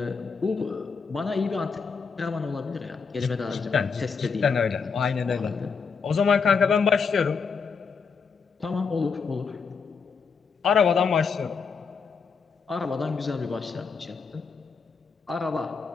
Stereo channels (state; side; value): quieter; right; 5.5 dB